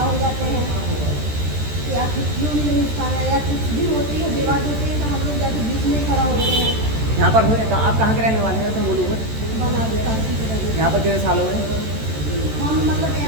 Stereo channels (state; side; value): late; left; 13 ms